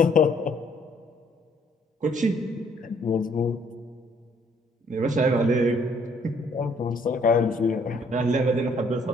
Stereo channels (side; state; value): both; normal; correlation 0.64